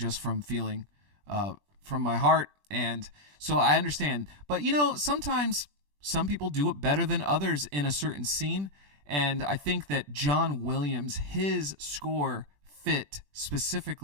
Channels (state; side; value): late; left; 20 ms